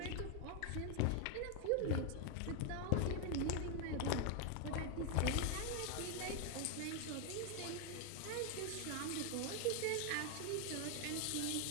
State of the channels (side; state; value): both; different; correlation 0.01